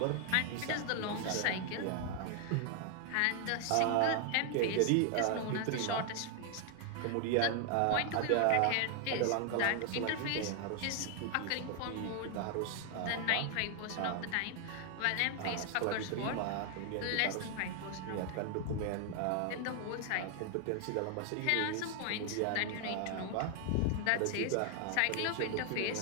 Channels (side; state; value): both; different; correlation 0.00